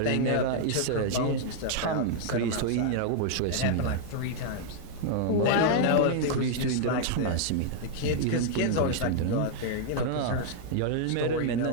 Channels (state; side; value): different; both; correlation 0.00